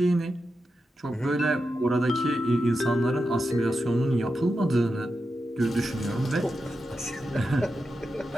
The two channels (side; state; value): both; normal; correlation 0.89